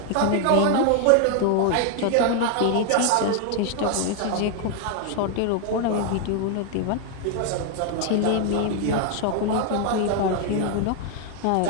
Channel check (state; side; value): different; both; correlation 0.01